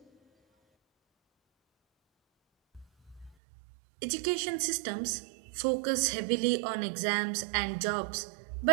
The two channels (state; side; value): drops out; left; at 3.4 s